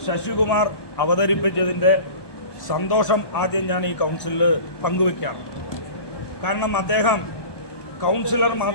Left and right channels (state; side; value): late; right; 1.2 ms